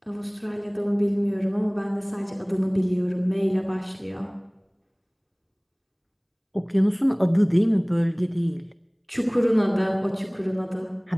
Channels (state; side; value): identical; both; correlation 1.00